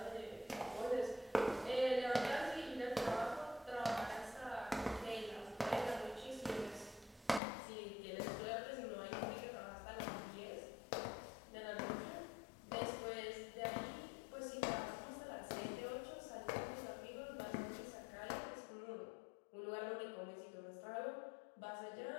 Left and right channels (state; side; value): drops out; right; at 7.4 s